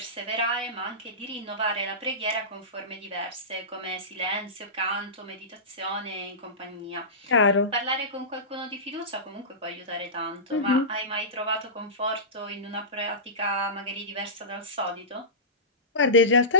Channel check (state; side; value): normal; both; correlation -0.19